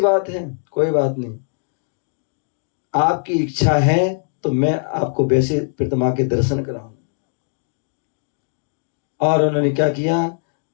है, कोई बात नहीं, आपकी इच्छा है तो मैं आपको वैसे प्रतिमा के दर्शन कराऊं। और उन्होंने क्या किया?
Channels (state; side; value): silent; right; digital silence